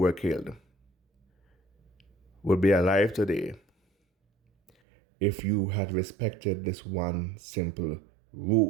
killed would be alive today if you had respected this one simple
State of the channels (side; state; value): left; drops out; at 4.7 s